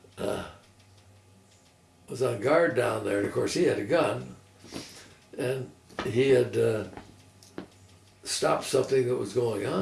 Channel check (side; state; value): both; identical; correlation 1.00